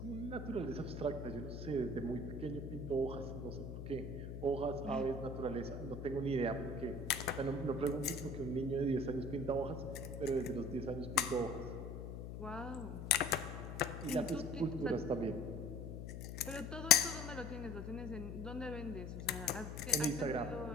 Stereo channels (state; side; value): noise; left; hum, 7 dB below the sound